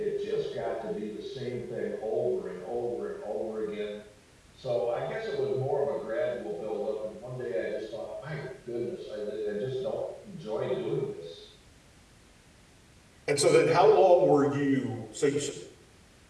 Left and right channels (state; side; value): identical; both; correlation 1.00